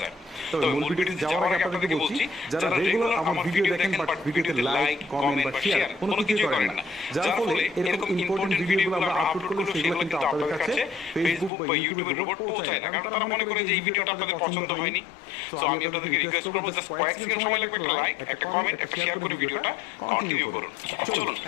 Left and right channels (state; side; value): drops out; right; at 11.5 s